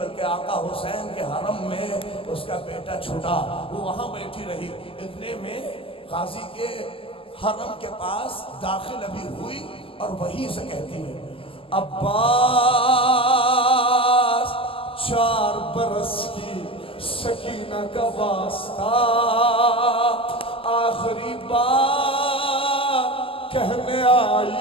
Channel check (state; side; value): late; right; 0.26 ms